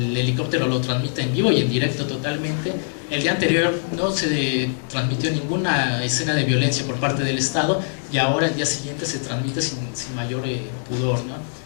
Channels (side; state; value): right; silent; digital silence